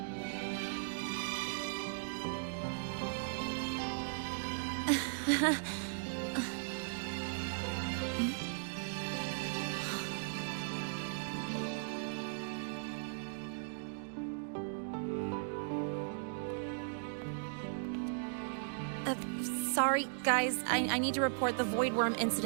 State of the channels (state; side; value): silent; left; digital silence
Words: Sorry, guys. I need to report the Void Worm